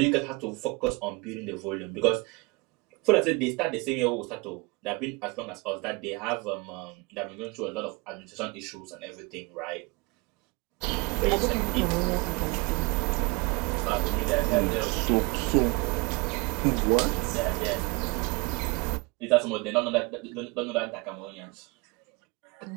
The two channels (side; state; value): left; quieter; 27.8 dB